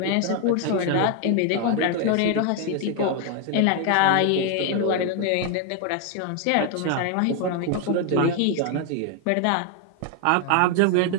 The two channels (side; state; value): both; different; correlation 0.01